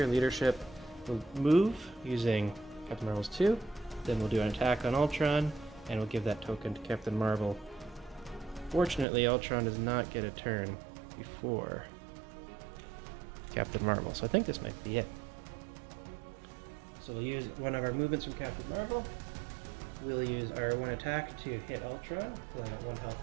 Leadership. We'll move using Captain Marvel's 2. Then we'll do an attack on Ultron, and we'll give that token to Captain Marvel. Fortunately, Ultron does not get a turn before Captain Marvel, so I think this might be it. So we'll use one of our movements from Captain Marvel. We'll use our 1 attack to hit Ultron, so I got 1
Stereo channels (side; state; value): left; drops out; at 9.1 s